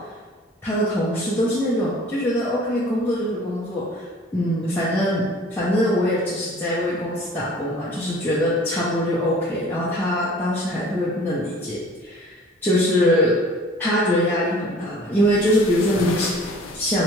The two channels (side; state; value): both; normal; correlation 0.49